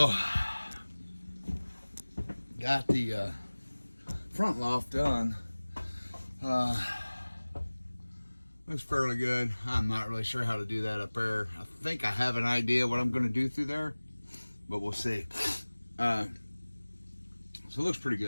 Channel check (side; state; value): both; inverted; correlation -1.00